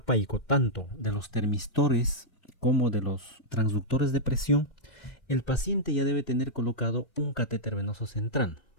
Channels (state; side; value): late; right; 2.1 ms